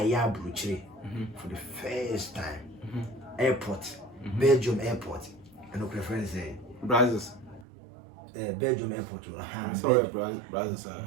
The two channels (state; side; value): drops out; left; at 7.7 s